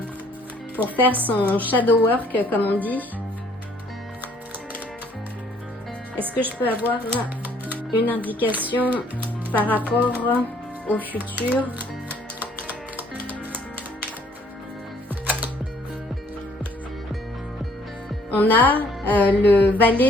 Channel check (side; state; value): both; normal; correlation 0.61